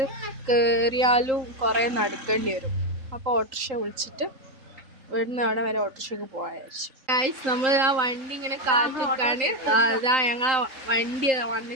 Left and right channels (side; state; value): left; late; 3.8 ms